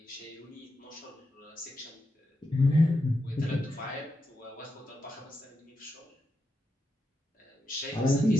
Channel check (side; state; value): both; normal; correlation 0.86